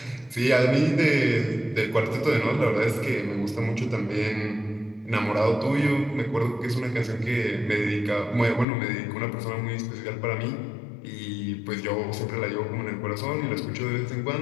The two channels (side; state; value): right; drops out; at 8.7 s